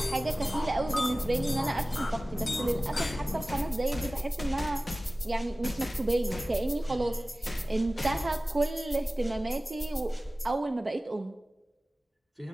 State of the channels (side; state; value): both; normal; correlation 0.97